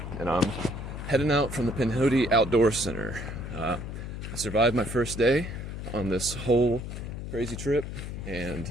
and I'm heading out from the Pinhoti Outdoor Center. I survived my first day on this whole crazy trip, and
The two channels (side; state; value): left; noise; hum, 7 dB below the sound